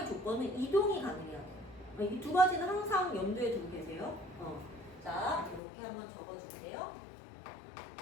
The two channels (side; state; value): right; drops out; at 5.6 s